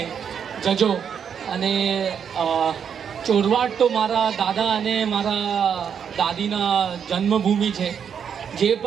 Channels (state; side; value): quieter; left; 7.6 dB